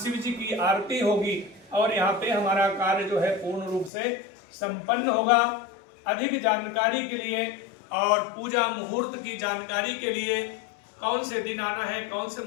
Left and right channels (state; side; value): drops out; right; at 3.9 s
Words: जी की आरती होगी और यहाँ पे हमारा कार्य जो है पूर्ण रूप से संपन्न होगा। अधिक जानकारी के लिए और पूजा मुहूर्त की जानकारी के लिए, कौन से दिन आना है, कौन से